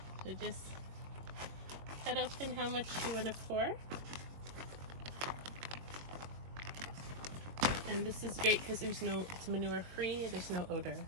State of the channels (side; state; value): left; late; 22 ms